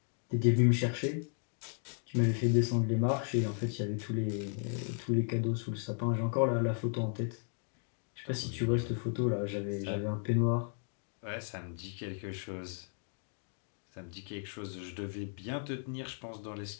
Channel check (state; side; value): silent; right; 55 dB below the other